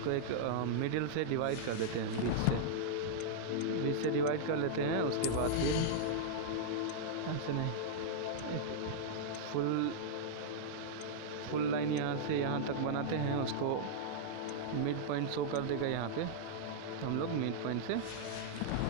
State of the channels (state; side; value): different; both; correlation -0.02